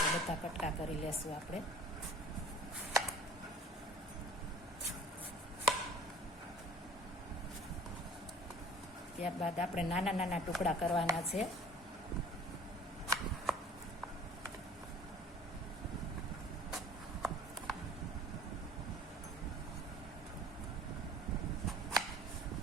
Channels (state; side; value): normal; both; correlation 0.48